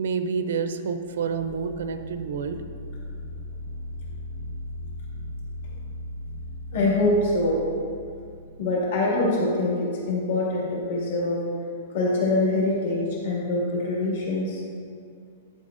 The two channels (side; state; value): both; normal; correlation -0.19